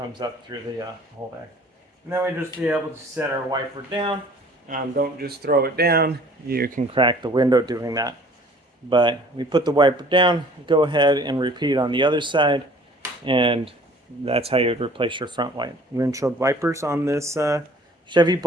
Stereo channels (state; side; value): normal; both; correlation 0.51